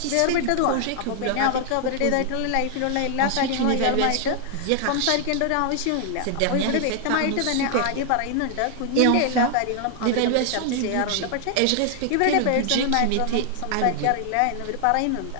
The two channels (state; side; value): different; both; correlation 0.00